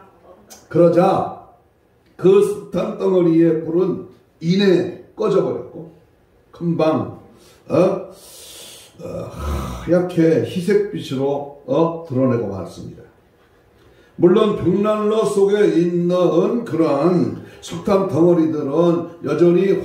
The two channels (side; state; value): both; identical; correlation 1.00